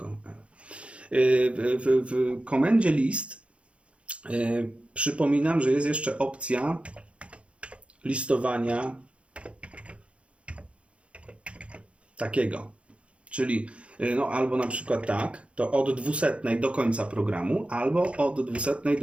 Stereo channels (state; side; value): late; left; 0.061 ms